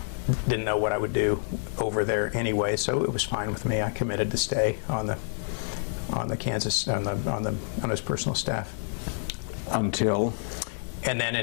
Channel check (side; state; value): right; silent; digital silence